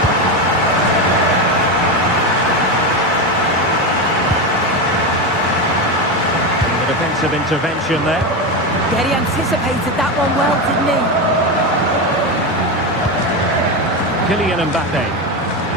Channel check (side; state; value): both; normal; correlation 0.15